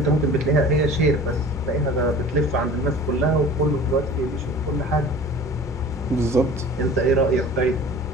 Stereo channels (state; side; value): normal; both; correlation 0.42